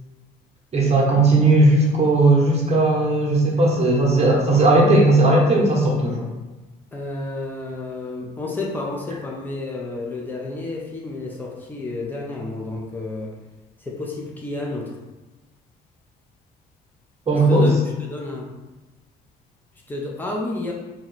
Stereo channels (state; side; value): normal; both; correlation 0.52